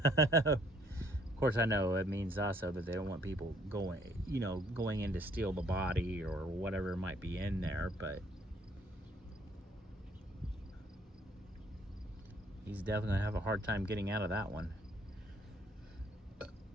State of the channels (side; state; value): both; normal; correlation 0.64